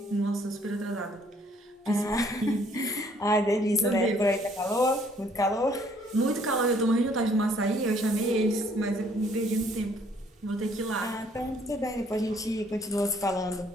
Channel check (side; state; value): both; normal; correlation 0.62